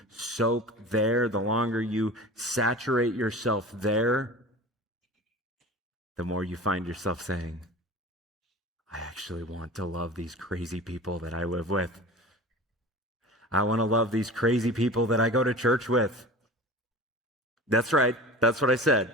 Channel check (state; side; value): normal; both; correlation 0.36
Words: soak there, the longer you saturate yourself there, the more you find yourself saying, I actually want to love these crazy people that I live with. I want to love these crazy people that I go to church with. That's right. That's what I said.